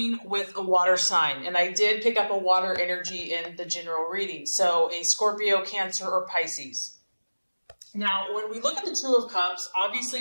with a water sign, and I did pick up a water energy in the general reading, so a Scorpio, Cancer, or Pisces. Now, when we look at the Two of Cups,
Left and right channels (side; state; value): both; inverted; correlation -1.00